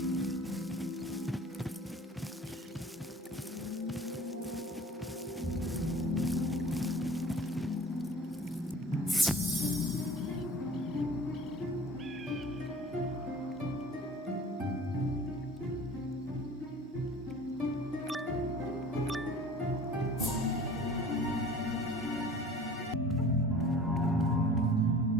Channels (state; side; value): normal; both; correlation 0.45